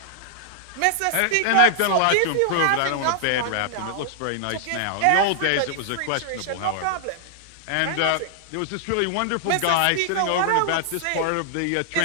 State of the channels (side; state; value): both; different; correlation 0.00